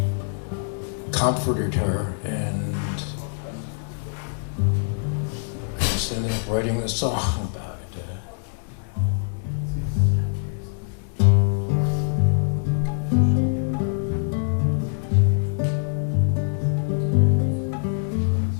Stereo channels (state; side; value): silent; right; 58 dB below the other